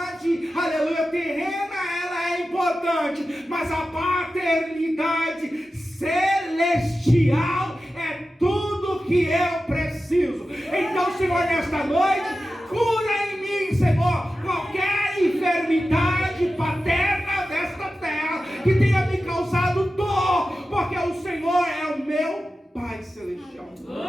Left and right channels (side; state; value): both; normal; correlation 0.93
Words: aleluia, terrena, ela é importante, mas a paternidade celestial é tudo que eu preciso. Então, Senhor, nesta noite, cura em mim, Senhor, qualquer enfermidade paterna desta terra que tenha me causado dor, porque o Senhor é o meu Pai Celestial.